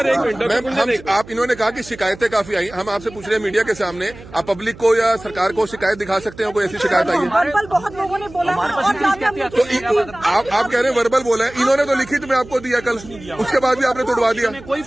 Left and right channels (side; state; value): right; noise; hum, 18 dB below the sound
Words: एक मिनट, मैम आप इन्होंने कहा कि शिकायतें काफी आई, हम आपसे पूछ रहे हैं मीडिया के सामने, आप पब्लिक को या सरकार को शिकायत दिखा सकते हैं? कोई ऐसी शिकायत आई है? बहुत लोगों ने बोला तो आप कह रहे हैं वर्बल बोला है, इन्होंने तो लिखित में आपको दिया कल, उसके बाद भी आपने तोड़वा दिया। कोई